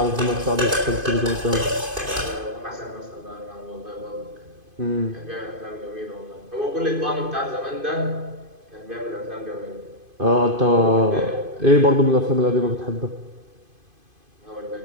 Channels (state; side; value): late; left; 2.5 ms